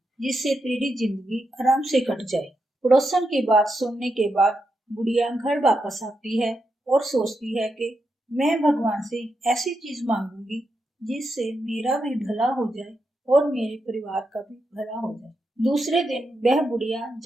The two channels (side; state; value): both; normal; correlation 0.84